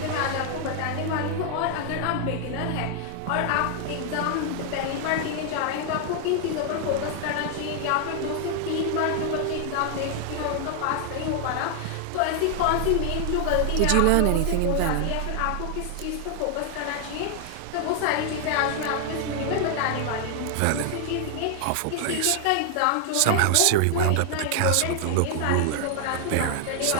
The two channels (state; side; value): different; both; correlation 0.00